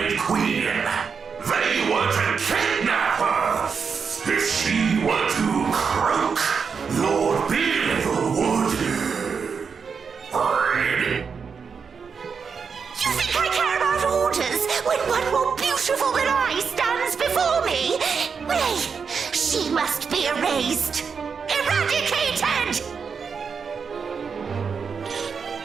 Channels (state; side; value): quieter; left; 5.9 dB